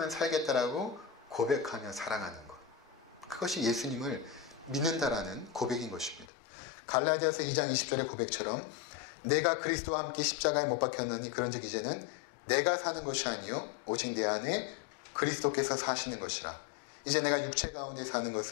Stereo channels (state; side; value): drops out; right; at 6.2 s